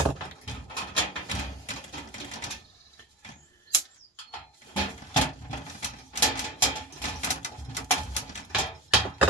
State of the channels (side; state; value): both; normal; correlation 0.24